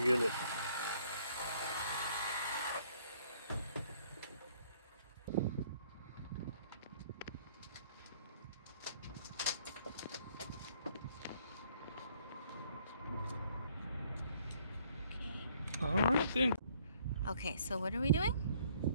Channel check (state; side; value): inverted; both; correlation -0.63